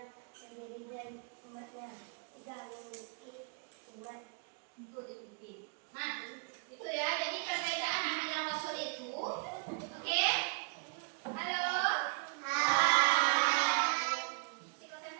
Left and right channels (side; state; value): left; quieter; 35.3 dB